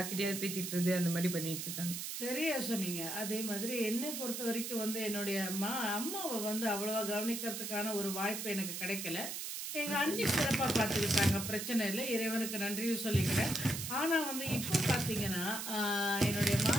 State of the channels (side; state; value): right; noise; hiss, 5 dB below the sound